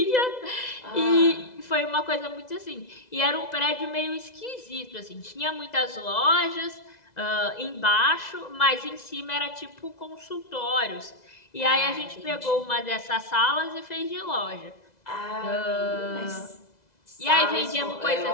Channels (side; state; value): right; late; 2.0 ms